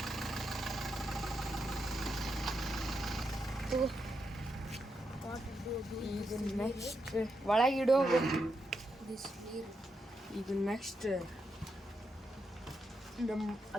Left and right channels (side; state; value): both; normal; correlation 0.83